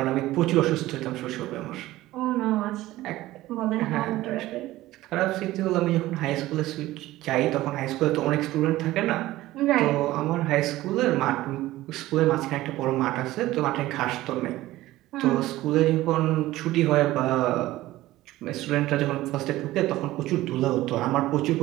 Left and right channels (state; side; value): quieter; left; 16.5 dB